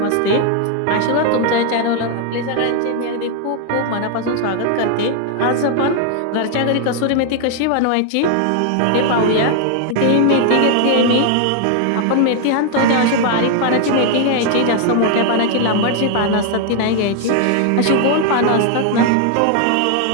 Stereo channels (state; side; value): different; both; correlation 0.00